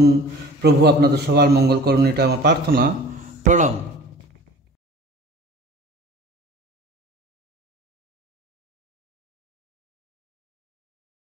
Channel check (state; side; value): normal; both; correlation 0.43